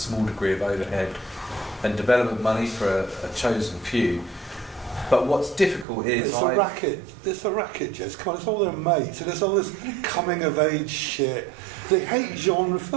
degree of overhead and development money for a chosen few. But what's difficult is it's a racket. It's a racket, Jess. Come on, it's all their mates, and it's all this coming of age shit. They hate genre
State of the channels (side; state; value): left; drops out; at 5.9 s